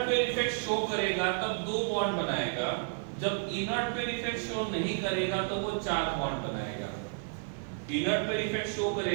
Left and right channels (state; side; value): silent; left; 57 dB below the other